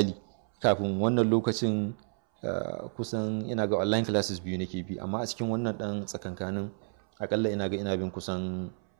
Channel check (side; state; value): left; silent; 58 dB below the other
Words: kafin wannan lokacin kusan ina ga online classes 2 nake bi, amma a cikin wannan ɗan tsakankanin akalla ina bin kusan